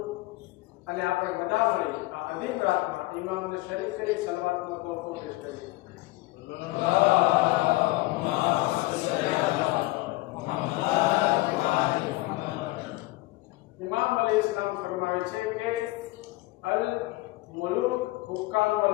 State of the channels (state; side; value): quieter; right; 20.3 dB